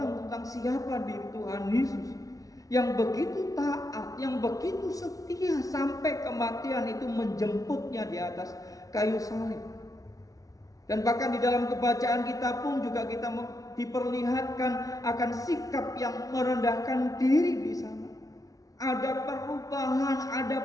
tentang siapa diri Tuhan Yesus yang begitu taat, yang begitu setia sampai kematian itu menjemputnya di atas kayu salib. Dan bahkan di dalam kebacaan kita pun juga kita diperlihatkan akan sikap yang merendahkan diri di sana. Ada perubahan,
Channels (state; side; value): late; right; 0.17 ms